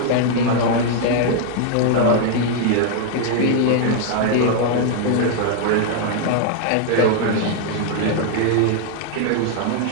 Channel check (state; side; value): different; both; correlation 0.00